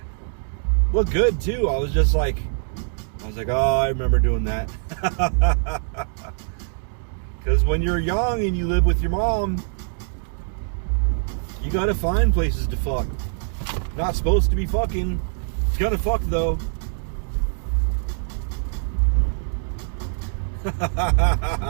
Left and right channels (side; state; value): left; silent; digital silence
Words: looked good too. I was like, oh, I remember doing that. Because when you're young and you live with your mom, you gotta find places to fuck. Not supposed to be fucking. Gotta fuck though.